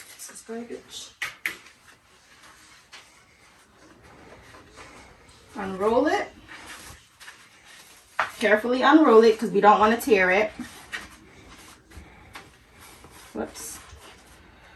This is garbage. Unroll it. Carefully unroll it because we don't want to tear it. Whoops.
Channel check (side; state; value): both; identical; correlation 1.00